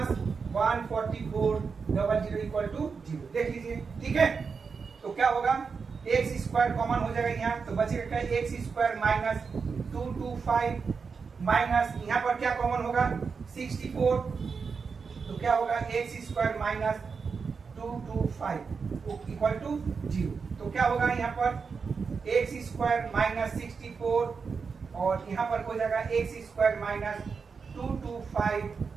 144 00 equal to 0, देख लीजिए, ठीक है। तो क्या होगा एक्स स्क्वायर कॉमन हो जाएगा यहाँ, तो बचेगा क्या एक्स स्क्वायर माइनस 225 माइनस यहाँ पर क्या कॉमन होगा 64, तो क्या होगा X square minus 225 225 equal to 0। तो क्या होगा यहाँ पर एक्स स्क्वायर माइनस 64 और यहाँ पर हो जाएगा X square minus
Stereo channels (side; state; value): left; quieter; 5.3 dB